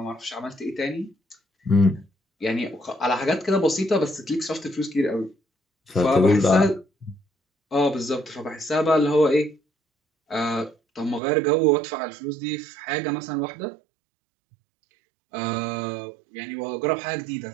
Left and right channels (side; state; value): left; drops out; at 11.2 s